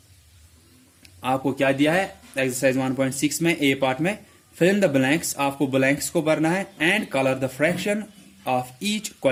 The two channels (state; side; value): identical; both; correlation 1.00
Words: आपको क्या दिया है एक्सरसाइज 1.6 में ए पार्ट में, फिल इन द ब्लैंक्स, आपको ब्लैंक्स को भरना है, and colour the fraction of each